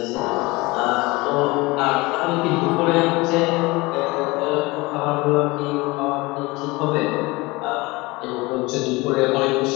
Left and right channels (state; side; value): quieter; right; 23.0 dB